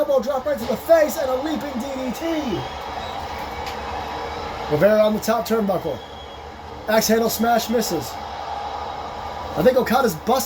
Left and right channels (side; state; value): both; identical; correlation 1.00